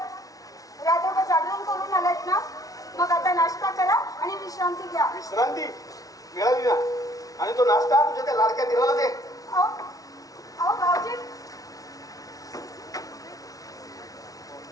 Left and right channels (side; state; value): right; late; 0.18 ms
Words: रात्रभर जागरण करून आलात ना, मग आता नाश्ता करा आणि विश्रांती घ्या. विश्रांती मिळाली ना, आणि तो नाश्ता तुझ्या त्या लाडक्या दिराला दे. अहो, अहो भाऊजी,